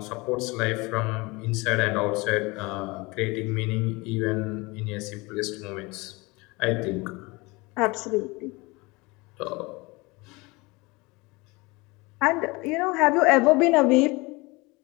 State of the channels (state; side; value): quieter; right; 24.6 dB